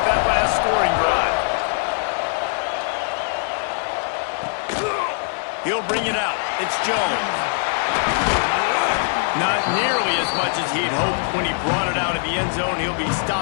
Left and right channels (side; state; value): right; silent; digital silence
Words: that last scoring drive. He'll bring it out. It's Jones. Not nearly as much as he'd hoped when he brought it out of the end zone. He'll be